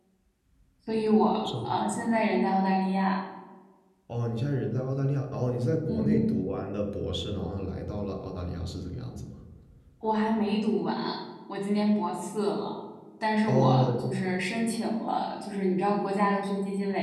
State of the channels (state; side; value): identical; both; correlation 1.00